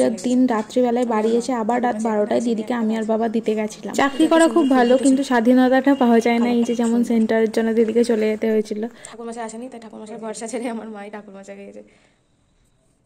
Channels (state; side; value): identical; both; correlation 1.00